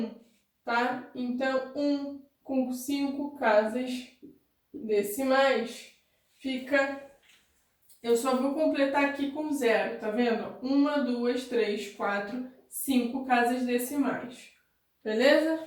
tá? Então, 1 com 5 casas decimais fica... Eu só vou completar aqui com 0, tá vendo? 1, 2, 3, 4, 5 casas decimais,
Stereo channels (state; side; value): identical; both; correlation 1.00